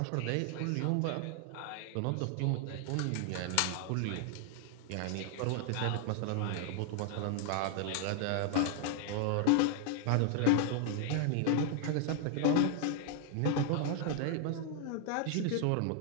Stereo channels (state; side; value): different; both; correlation 0.00